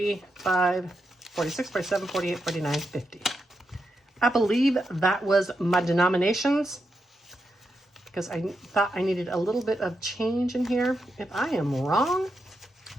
46, 47, 48, 49, 50. I believe that was my denominations because I thought I needed a little bit of change in here. If I am wrong,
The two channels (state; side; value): normal; both; correlation 0.85